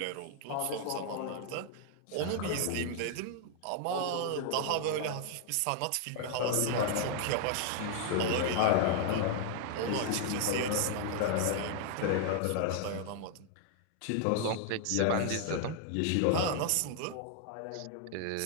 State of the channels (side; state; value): both; different; correlation 0.00